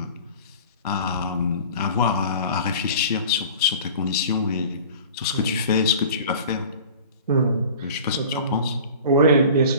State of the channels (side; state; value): both; inverted; correlation -0.42